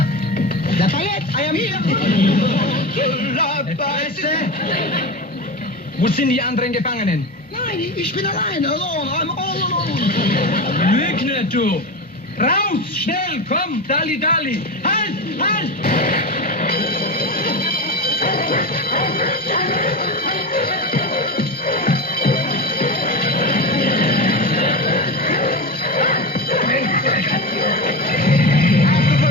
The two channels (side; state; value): both; normal; correlation 0.22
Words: Lafayette, I am here. Wo sind die anderen Gefangenen? Nein, ich bin allein, alone, I'm all alone. Lüg nicht, du! Raus! Schnell! Komm! Dali, Dali! Halt! Halt!